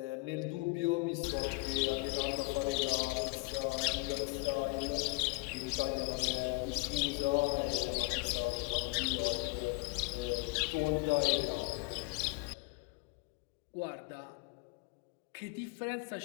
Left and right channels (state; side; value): quieter; right; 26.4 dB